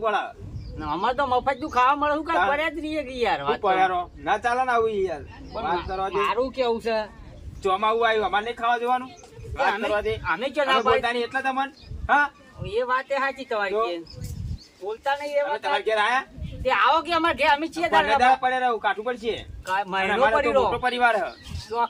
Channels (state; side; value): identical; both; correlation 1.00